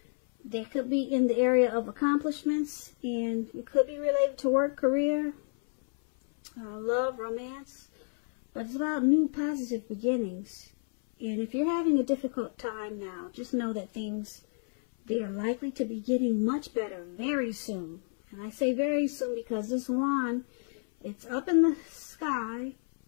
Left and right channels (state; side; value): silent; right; 58 dB below the other